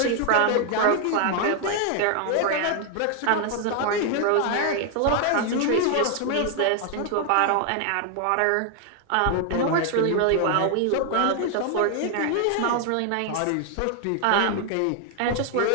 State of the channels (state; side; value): different; both; correlation 0.00